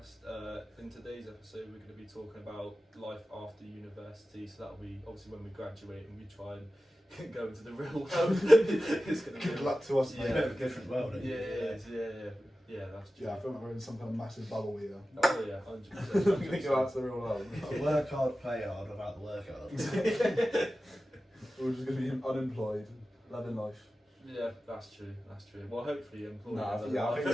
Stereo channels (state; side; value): normal; both; correlation 0.94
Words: In today's episode we're going to be talking about life after university, so that'll be obviously when we graduate and we try and go into the real world. It's going to Good luck to us, mate. Yeah, a different world. Yeah, that's true. Yeah, I feel like we're in some kind of massive bubble here. Oh yeah, 100%. We're going to go out to the real world. Work hard, play hard, without the work hard. We're just going to be unemployed, loving life. Yeah, that's true. Well, hopefully employed. Nah, in yeah, I life.